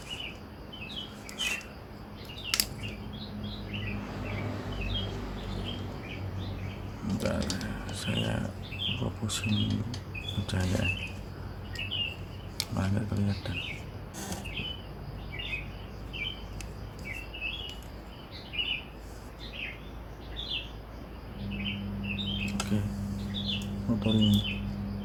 Bentar, saya fokusin pencahayaan. Malah nggak kelihatan. Oke, motor ini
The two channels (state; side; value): identical; both; correlation 1.00